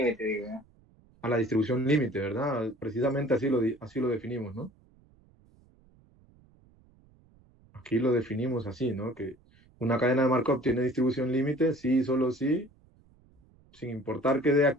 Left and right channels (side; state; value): right; noise; rumble, 30 dB below the sound